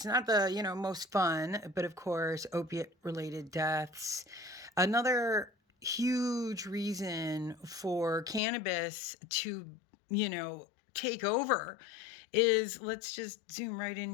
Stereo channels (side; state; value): right; drops out; at 8.4 s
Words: not the most fun, but of course opiate related deaths. Another huge reason for cannabis to take over is, let's just zoom right